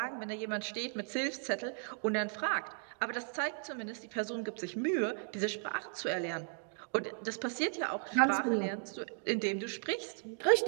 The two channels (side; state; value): left; silent; 54 dB below the other